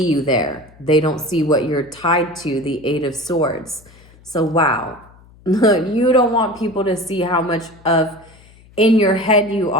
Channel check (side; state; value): left; noise; hum, 26 dB below the sound